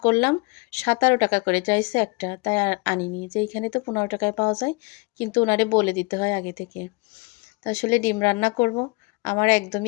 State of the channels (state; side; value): quieter; right; 27.7 dB